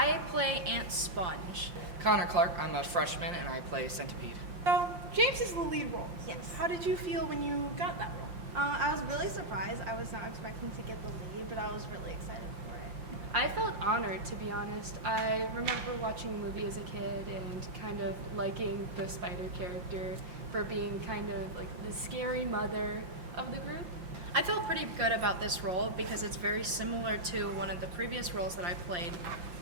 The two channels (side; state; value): left; late; 5.7 ms